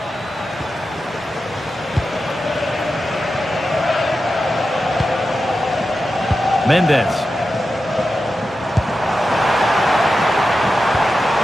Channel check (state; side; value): normal; both; correlation 0.91